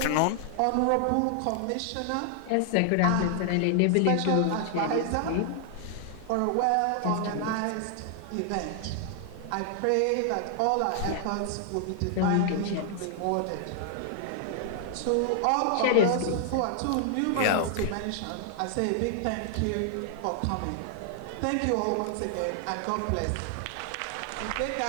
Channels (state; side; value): different; both; correlation 0.00